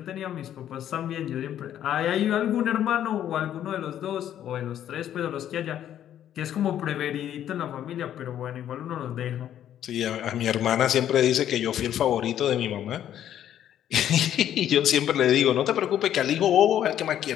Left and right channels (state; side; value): quieter; right; 10.8 dB